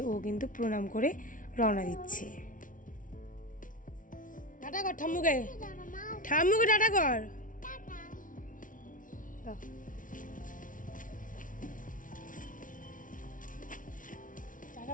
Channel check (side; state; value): right; late; 0.38 ms